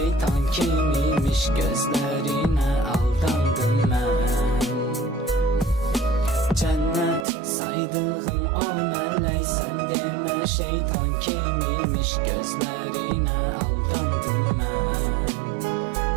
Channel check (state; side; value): drops out; left; at 7.2 s